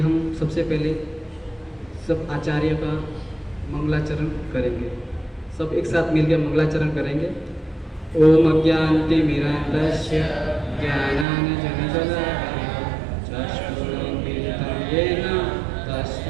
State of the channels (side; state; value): left; drops out; at 11.2 s